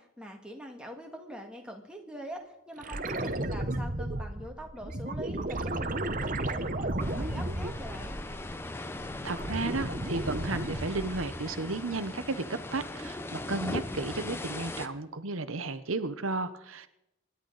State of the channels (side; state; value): both; normal; correlation 0.40